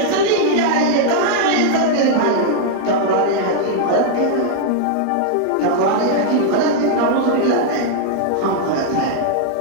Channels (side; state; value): both; different; correlation 0.00